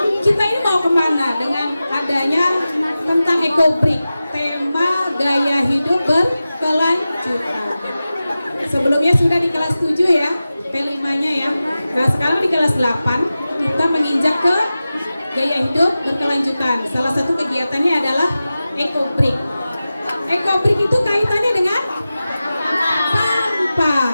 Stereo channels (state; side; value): inverted; both; correlation -0.95